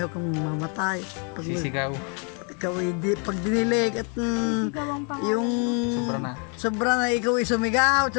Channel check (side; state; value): right; quieter; 37.5 dB